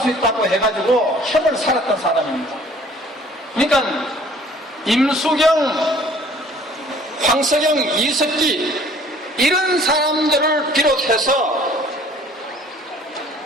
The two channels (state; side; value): normal; both; correlation 0.54